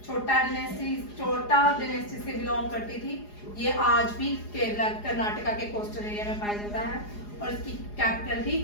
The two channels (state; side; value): late; right; 4.8 ms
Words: छोटा डायनेस्टी से बिलोंग करती थी। ये आज भी केरला कर्नाटका के कोस्टल एरिया में पाया जाता है। और इसकी कैपिटल थी